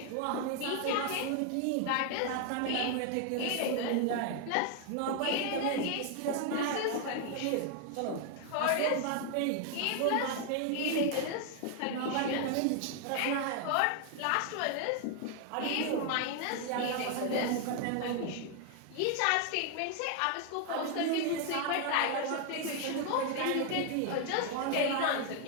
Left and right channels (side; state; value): both; different; correlation 0.00